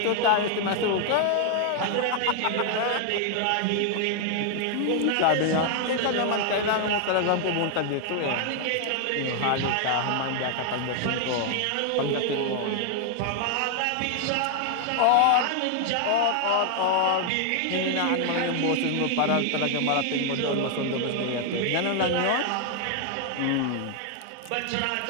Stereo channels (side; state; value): both; different; correlation 0.00